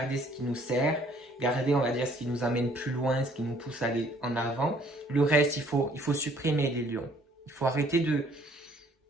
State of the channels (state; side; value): normal; both; correlation 0.60